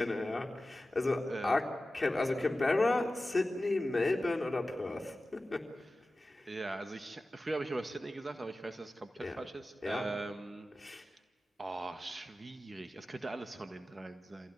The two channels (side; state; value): both; normal; correlation 0.95